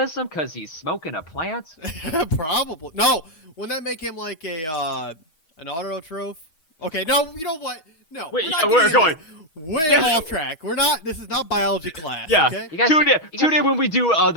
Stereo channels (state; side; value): late; right; 6.2 ms